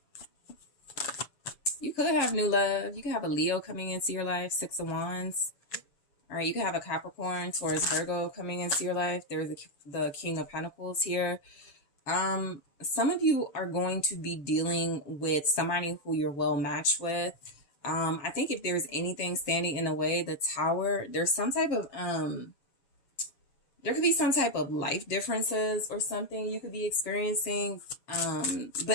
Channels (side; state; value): right; late; 6.9 ms